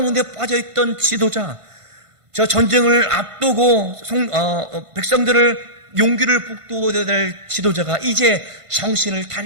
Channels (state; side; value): late; left; 1.5 ms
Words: 빠져있던 지도자, 저 전쟁을 앞두고 백성들을 용기를 북돋워야 될 지도자가 이제 정신을